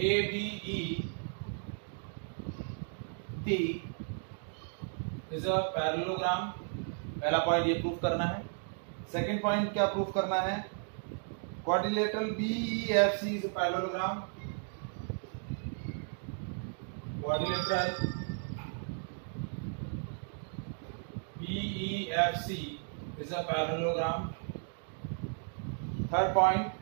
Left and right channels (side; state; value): left; silent; 55 dB below the other